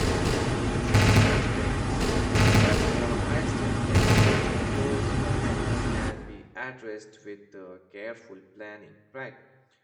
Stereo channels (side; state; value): both; identical; correlation 1.00